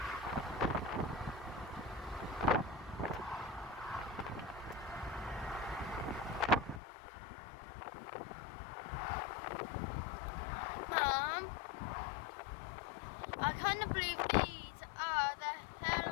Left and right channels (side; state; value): right; drops out; at 6.8 s